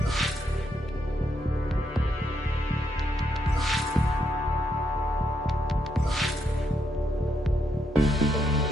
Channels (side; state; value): both; normal; correlation 0.77